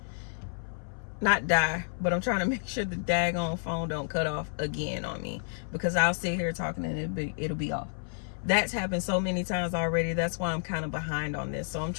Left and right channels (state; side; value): silent; right; 58 dB below the other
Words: Not die, but I'm trying to make sure the daggone phone don't cut off again on me, because I'll sit here talking and it'll be off. That's happened so many times already. That's why I'm kind of behind on this. So I'm